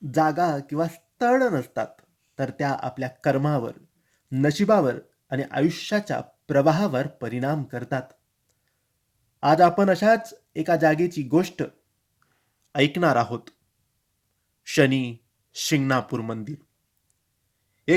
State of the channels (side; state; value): both; identical; correlation 1.00